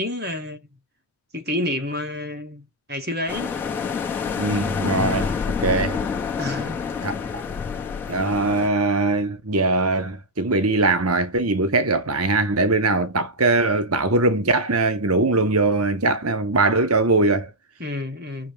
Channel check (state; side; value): normal; both; correlation -0.04